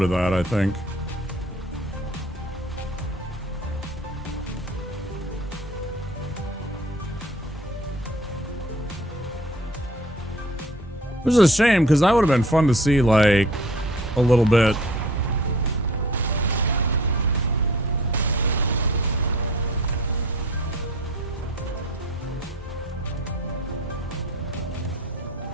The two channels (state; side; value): normal; both; correlation 0.49